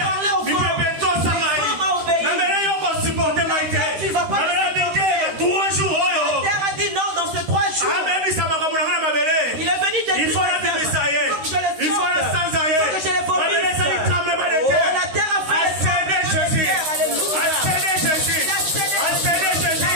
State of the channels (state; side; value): late; left; 13 ms